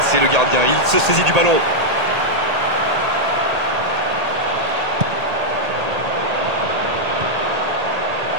le gardien, il se saisit du ballon.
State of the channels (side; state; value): left; late; 1.8 ms